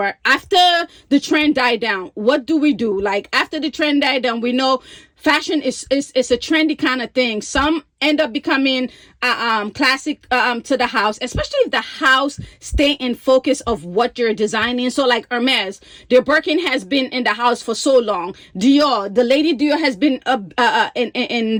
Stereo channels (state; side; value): identical; both; correlation 1.00